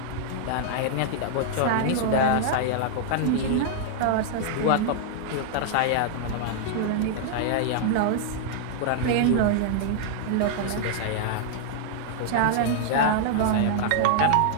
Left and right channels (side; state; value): both; different; correlation -0.01